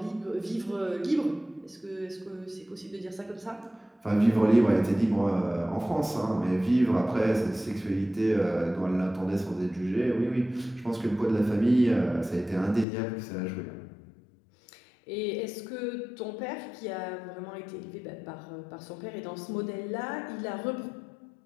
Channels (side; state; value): right; drops out; at 12.9 s